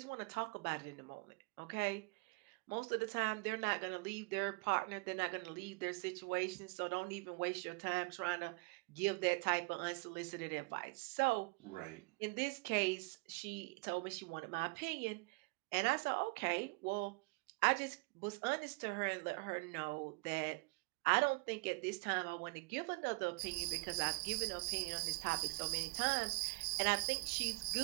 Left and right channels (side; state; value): left; quieter; 29.4 dB